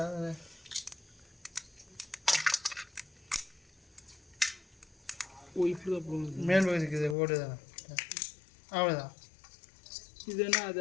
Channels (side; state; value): right; drops out; at 7.2 s